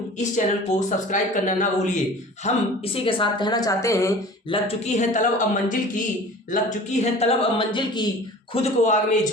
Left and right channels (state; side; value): normal; both; correlation 0.42